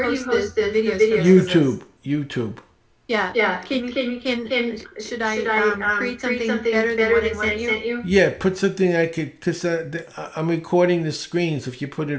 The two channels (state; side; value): identical; both; correlation 1.00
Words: post the videos? YouTube. Yeah. Should I create something better than what I sent you? Yeah, put something I could, because I'm recording the screens. If you put